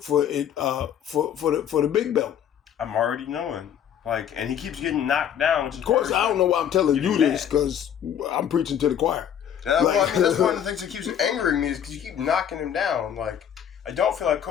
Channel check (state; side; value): quieter; right; 9.2 dB